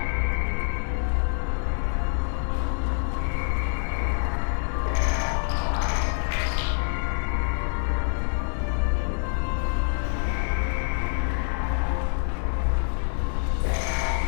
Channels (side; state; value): right; silent; 61 dB below the other